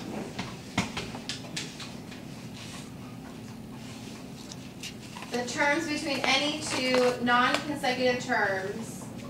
The terms between any 2 non-consecutive terms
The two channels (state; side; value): identical; both; correlation 1.00